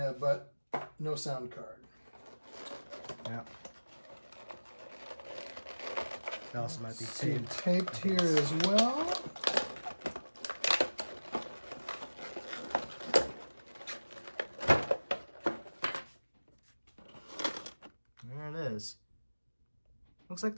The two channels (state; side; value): inverted; both; correlation -1.00